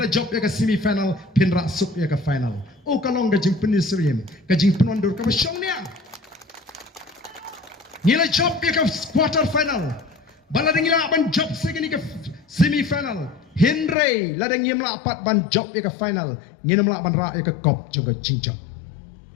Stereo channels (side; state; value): right; drops out; at 14.0 s